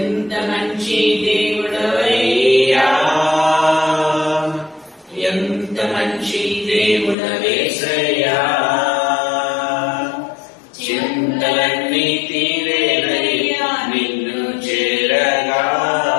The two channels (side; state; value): right; drops out; at 7.2 s